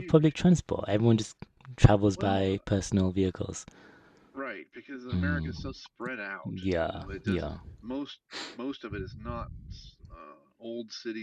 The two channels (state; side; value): identical; both; correlation 1.00